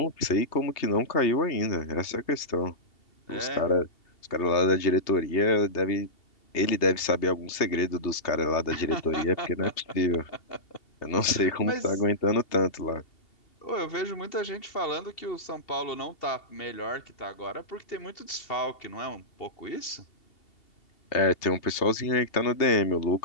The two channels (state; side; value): late; right; 2.7 ms